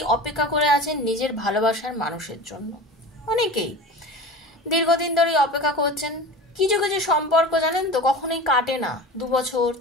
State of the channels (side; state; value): both; normal; correlation 0.33